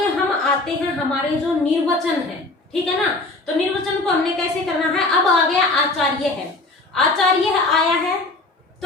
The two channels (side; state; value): right; quieter; 3.1 dB